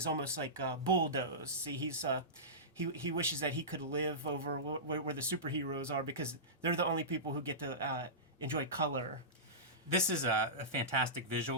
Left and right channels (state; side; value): normal; both; correlation -0.18